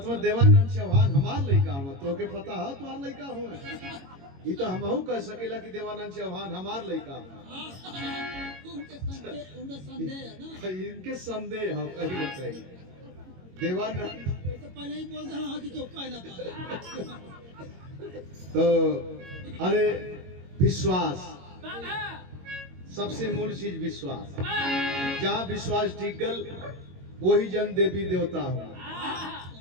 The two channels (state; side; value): late; left; 22 ms